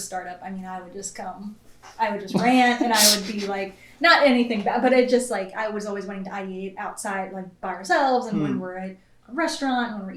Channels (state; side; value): identical; both; correlation 1.00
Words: startup, I would just rant, and I would be, like, not anything bad, but it just, like, I was always wanting to ideate outside, like, by ourselves, and when we're at a restaurant, when we're